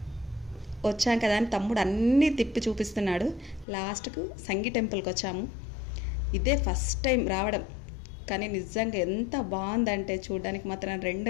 వచ్చాం కదా అని తమ్ముడు అన్నీ తిప్పి చూపిస్తున్నాడు. లాస్ట్కు సంగీ టెంపుల్కి వచ్చాము. ఇదే ఫస్ట్ టైం రావడం, కానీ నిజంగా ఎంత బాగుందంటే చూడడానికి మాత్రం రెండు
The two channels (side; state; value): right; drops out; at 3.7 s